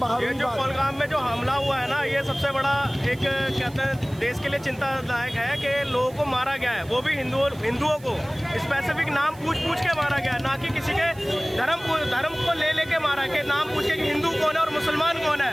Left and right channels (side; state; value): right; noise; hiss, 24 dB below the sound